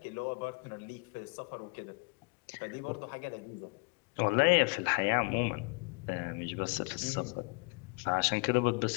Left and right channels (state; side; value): quieter; right; 32.4 dB